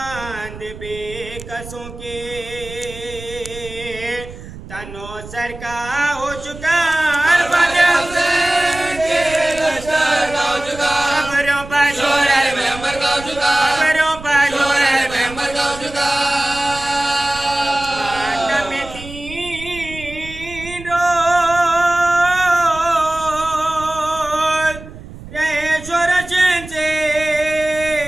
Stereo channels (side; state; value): right; noise; rumble, 14 dB below the sound